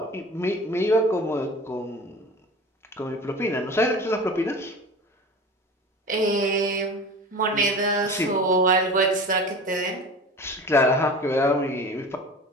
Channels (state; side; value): normal; both; correlation 0.36